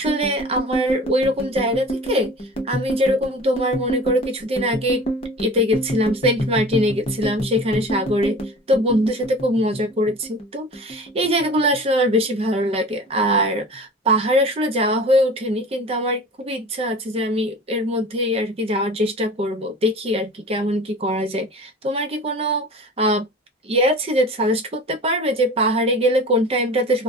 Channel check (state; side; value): normal; both; correlation 0.39